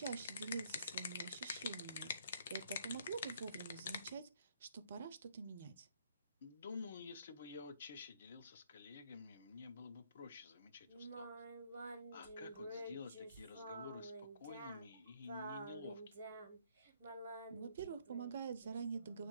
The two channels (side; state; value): both; inverted; correlation -0.66